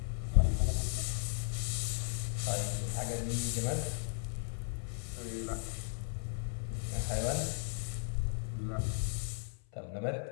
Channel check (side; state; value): right; silent; 54 dB below the other